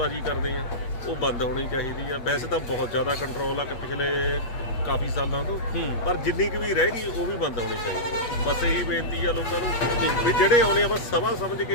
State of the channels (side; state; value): right; late; 8.4 ms